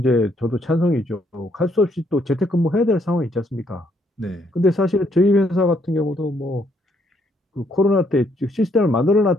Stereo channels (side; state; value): both; normal; correlation 0.71